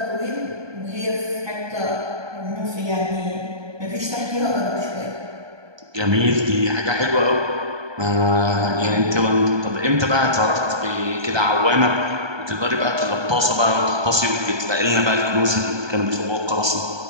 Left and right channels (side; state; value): left; late; 1.2 ms